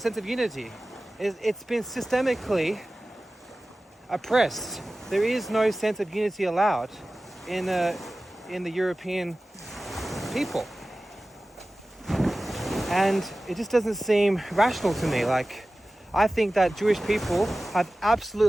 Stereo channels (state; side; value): normal; both; correlation 0.96